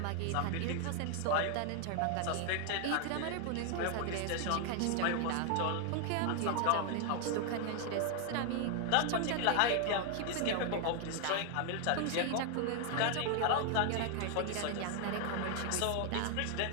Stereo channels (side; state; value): both; different; correlation 0.00